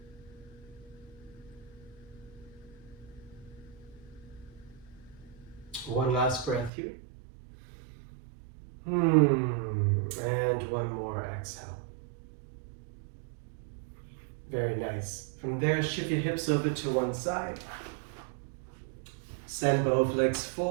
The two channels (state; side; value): drops out; left; at 6.7 s